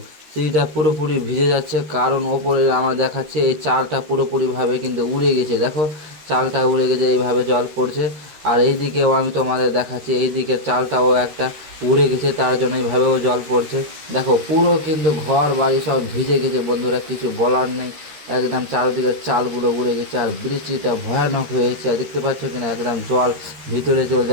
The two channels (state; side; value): late; left; 13 ms